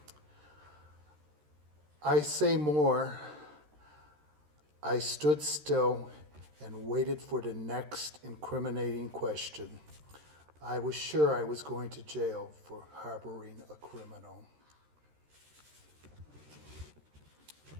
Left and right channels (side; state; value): left; late; 13 ms